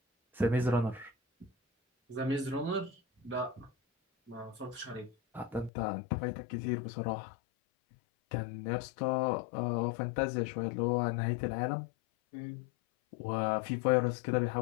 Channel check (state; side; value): drops out; right; at 5.7 s